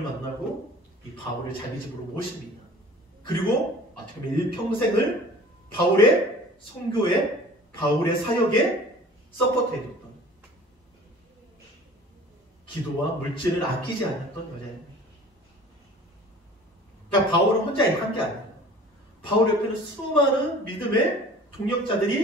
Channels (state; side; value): normal; both; correlation 0.45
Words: 만나고 이 바울을 자기 집으로 모십니다. 그리고 어떻게 보면 일평생을 바울의 선교에, 바울의 사역에 서포트해줬던, 기도와 물질을 아끼지 않았던 여자입니다. 그러니까 바울은 혼자 한 게 아니에요. 바울 옆에는 수많은 믿음의